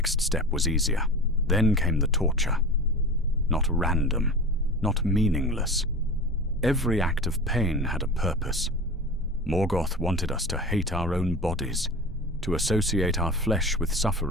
step was easier. Then came the torture. Not random, not meaningless. Every act of pain had a purpose. Morgoth wanted us to hate our own bodies, to associate our flesh with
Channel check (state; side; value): normal; both; correlation 0.32